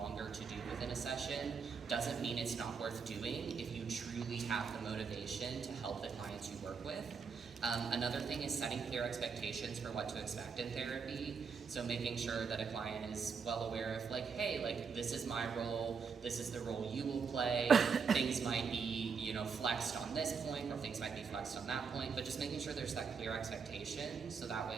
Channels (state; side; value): quieter; left; 5.7 dB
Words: to do within a session doesn't mean it's not worth doing if you truly have the motivation to help the clients you work with. Another thing is setting clear expectations for what to expect in therapy. So making sure that a client is well aware of hey, this is my role, this is the role you will play. Things might be, flexed on this point, or things might be flexed on that point, but just making sure there's that clear expectation, so that way